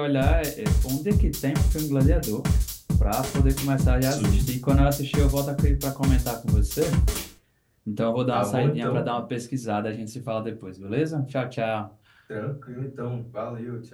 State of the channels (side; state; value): both; identical; correlation 1.00